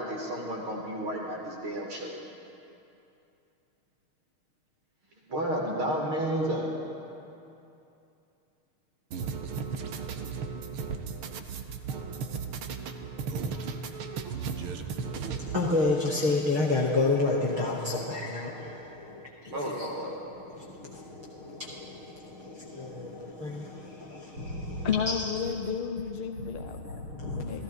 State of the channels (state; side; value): late; left; 6.5 ms